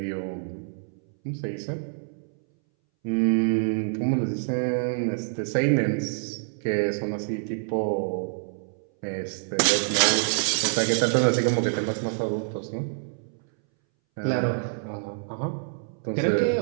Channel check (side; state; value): left; silent; 61 dB below the other